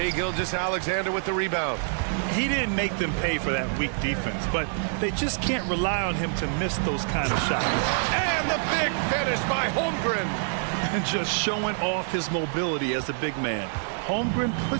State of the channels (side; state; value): left; silent; digital silence